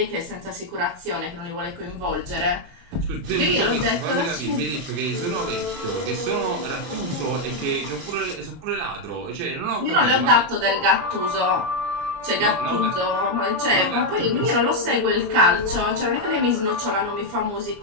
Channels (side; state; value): left; late; 29 ms